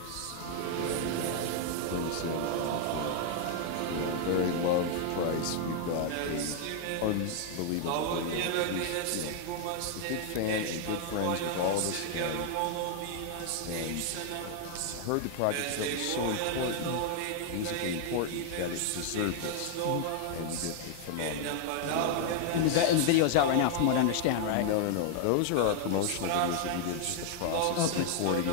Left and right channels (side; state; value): both; different; correlation 0.00